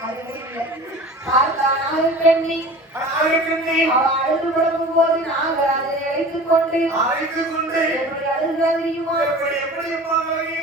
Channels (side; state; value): both; normal; correlation 0.39